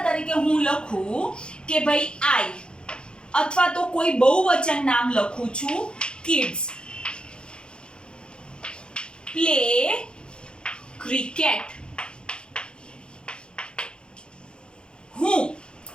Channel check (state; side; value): late; right; 0.051 ms